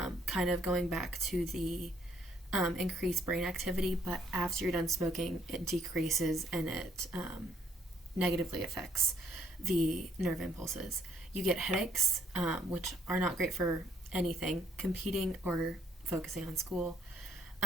of going back to the increased brain activity. But after you're done smoking, it decreases, and it negatively affects the nerve impulses. You get headaches, which are not great for anything, competing or focusing on school.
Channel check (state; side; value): normal; both; correlation 0.67